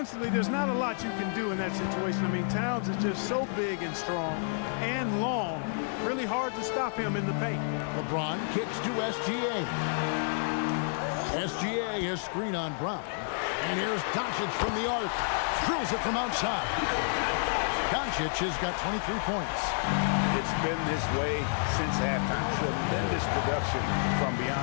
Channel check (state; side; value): silent; right; digital silence